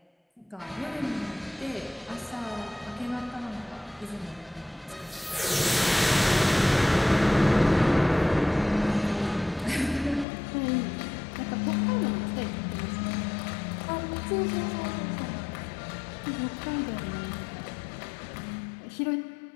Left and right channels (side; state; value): right; drops out; at 10.2 s